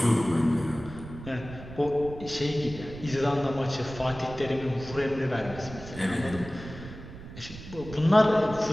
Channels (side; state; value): right; noise; rumble, 13 dB below the sound